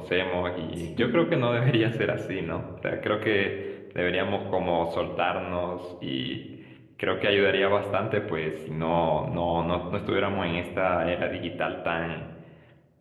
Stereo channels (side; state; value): both; identical; correlation 1.00